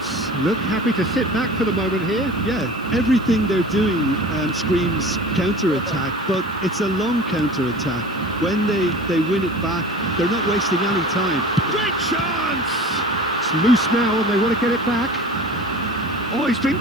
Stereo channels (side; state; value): right; noise; hiss, 26 dB below the sound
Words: look happy to sit back for the moment here. Yeah, everything they're doing screams counter-attack, but it's a long counter-attack. When they win it back, they're not wasting any time. Great chance! It's loose now and they want to get it back. Oh, he's been